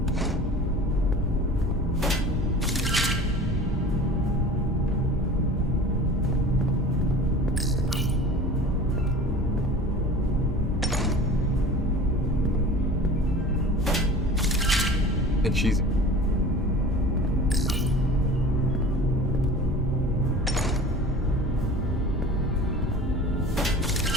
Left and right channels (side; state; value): both; normal; correlation 0.40